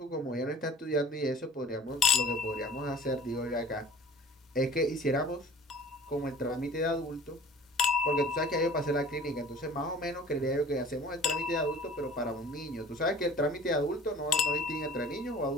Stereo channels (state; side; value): normal; both; correlation 0.47